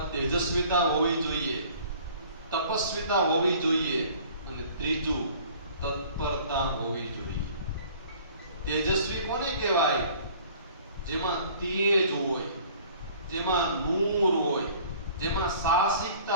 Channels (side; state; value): both; inverted; correlation -0.51